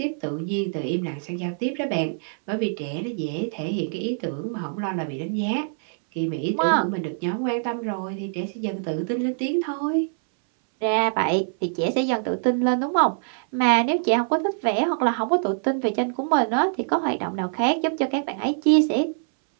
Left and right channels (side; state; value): left; silent; 62 dB below the other